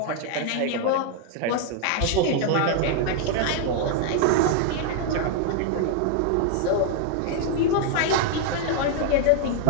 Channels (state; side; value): different; both; correlation 0.00